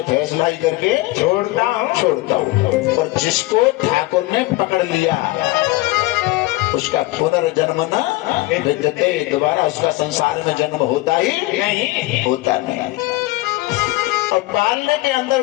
फैसला ही करके छोड़ता हूँ, और जिसको ठाकुर ने पकड़ लिया उसका पुनर्जन्म न विद्यते, दोबारा उसका संसार में जन्म होता ही नहीं, होता नहीं। और पालने के अंदर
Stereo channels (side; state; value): right; quieter; 19.5 dB